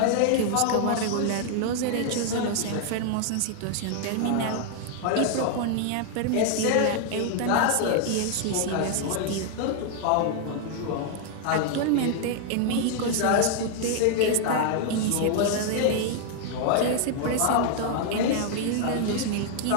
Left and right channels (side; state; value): both; different; correlation 0.00